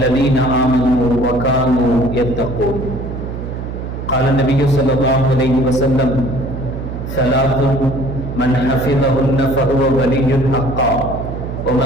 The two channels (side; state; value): right; noise; hum, 7 dB below the sound